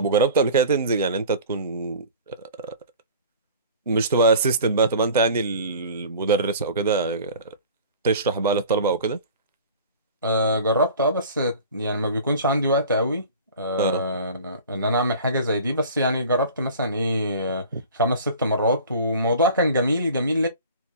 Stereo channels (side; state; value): both; inverted; correlation -0.42